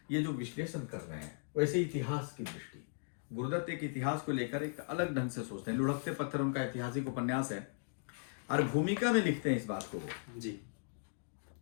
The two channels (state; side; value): silent; right; digital silence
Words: ये जो विश्लेषण कर रहे हैं, वैसे इतिहास की दृष्टि, गुरुदत्त एक इतिहास को लेकर एक अलग ढंग से सोचते हैं। लुढ़कते पत्थर उनका ऐतिहासिक उपन्यास है, और भूमिका में लिखते हैं इस बात को जी।